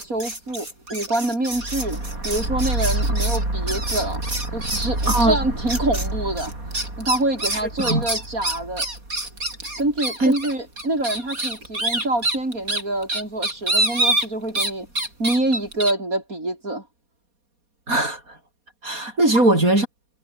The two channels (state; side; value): late; left; 4.2 ms